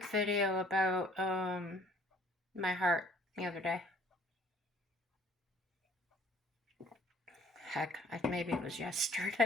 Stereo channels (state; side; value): normal; both; correlation 0.57